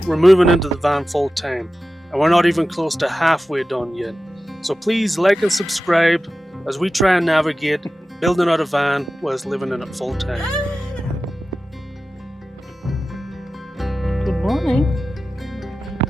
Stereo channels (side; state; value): both; normal; correlation 0.94